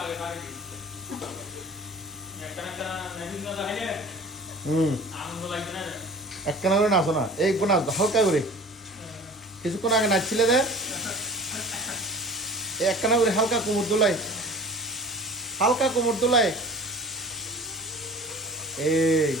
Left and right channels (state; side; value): normal; both; correlation 0.42